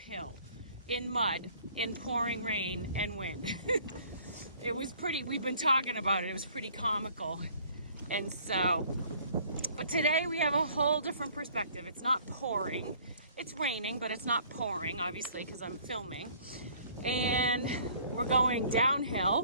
in mud, in pouring rain and wind. It was pretty, we've been talking about it. It was pretty comical. And so, but today we have a whole different perspective. It's not pouring. It's raining, but it's not pouring, obviously, because I'm filming. And we're going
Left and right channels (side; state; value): both; inverted; correlation -0.56